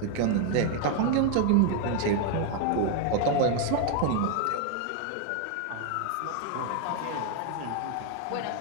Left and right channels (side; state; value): both; different; correlation 0.01